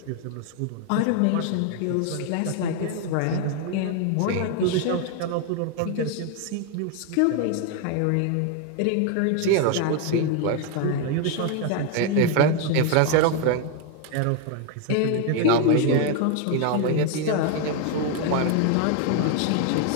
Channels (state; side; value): different; both; correlation 0.01